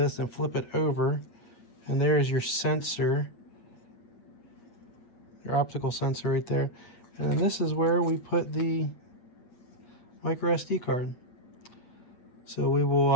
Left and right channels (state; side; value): late; right; 8.3 ms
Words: and flip it over, and there's your sensor, your optical sensor right there, and this is where we put the micro SD card. So we